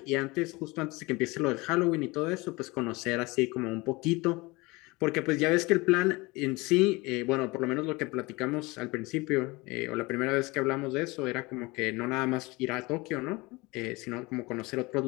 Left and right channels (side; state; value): right; quieter; 23.7 dB